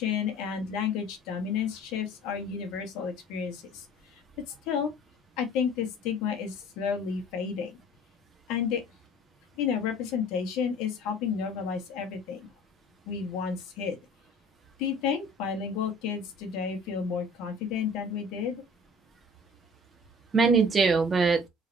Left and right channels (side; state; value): both; normal; correlation 0.47